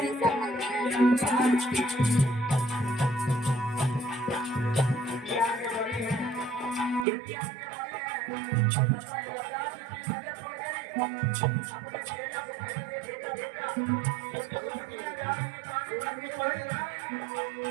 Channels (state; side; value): drops out; left; at 7.1 s